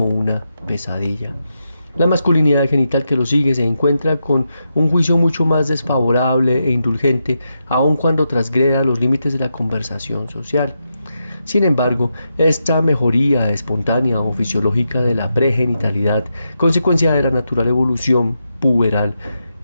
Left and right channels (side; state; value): both; inverted; correlation -0.85